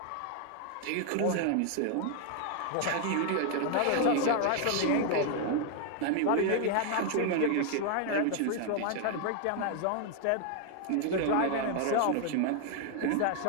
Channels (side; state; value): both; different; correlation 0.00